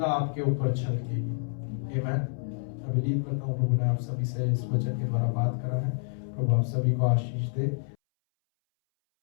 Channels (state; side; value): silent; right; 59 dB below the other